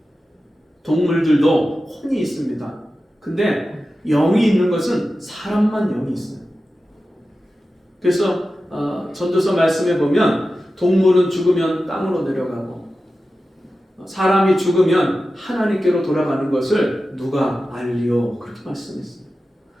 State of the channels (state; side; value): normal; both; correlation 0.93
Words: 동물들도 혼이 있습니다. 근데 영이 있는 것은 사람만 영이 있어요. 그래서 전도서 말씀에 보면 동물은 죽으면 땅으로 내려가고 사람이 죽으면 하나님께로 돌아가는 것을 누가 알리오 그렇게 말씀했어요.